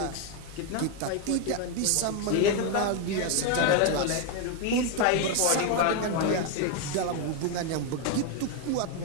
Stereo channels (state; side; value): different; both; correlation 0.01